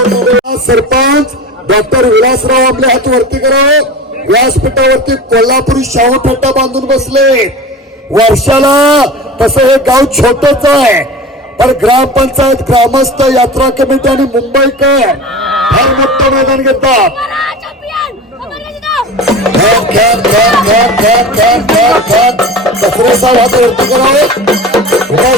सरपंच डॉक्टर विलासराव आपल्या हात वरती करावं. व्यासपीठावरती कोल्हापुरी शाहू फेटा बांधून बसले. वर्षाला तसं हे गाव छोटच आहे, पण ग्रामपंचायत, ग्रामस्थ, यात्रा कमिटी आणि मुंबईकर फार मोठं मैदान घेतात. कचरेचा हात वरती करावं.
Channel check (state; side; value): normal; both; correlation 0.33